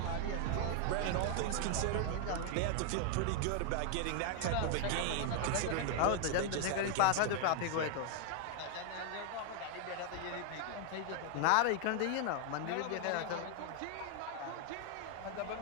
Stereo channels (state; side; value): different; both; correlation 0.00